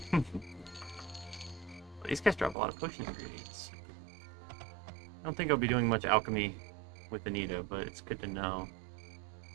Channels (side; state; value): left; drops out; at 2.6 s